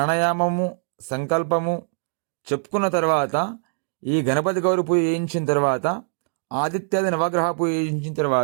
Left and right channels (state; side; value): silent; left; digital silence